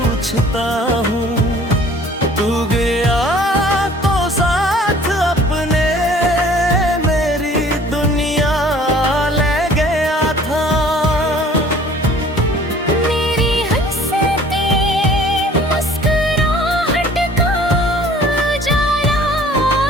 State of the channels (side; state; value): both; normal; correlation 0.52